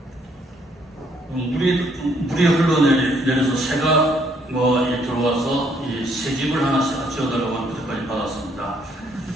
물이 흘러내려서 새가 들어와서 이 새집을 하나 지어달라고 하는 부탁까지 받았습니다.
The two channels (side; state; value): both; normal; correlation 0.68